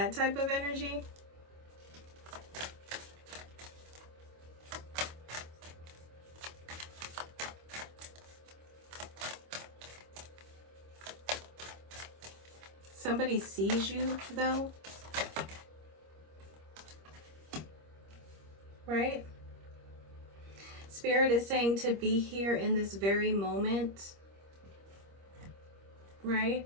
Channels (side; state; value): left; late; 25 ms